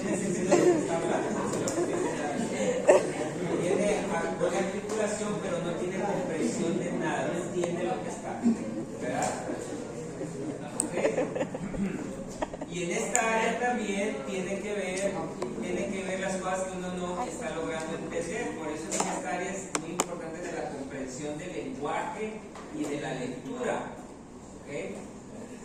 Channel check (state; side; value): identical; both; correlation 1.00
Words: sentido lo que está hablando. Tiene buena articulación, pero no tiene comprensión de nada, no entiende lo que está, ¿verdad? ¿Okay? Y en esta área también tiene que ver las cosas que uno no está logrando entender. Por eso en esta área es muy importante de la comprensión del lenguaje y de la lectura. ¿Okay?